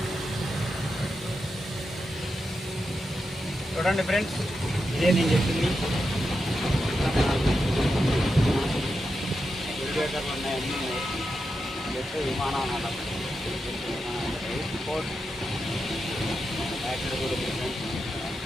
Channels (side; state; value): both; normal; correlation 0.87